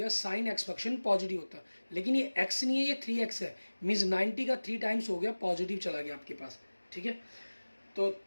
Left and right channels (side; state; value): both; inverted; correlation -1.00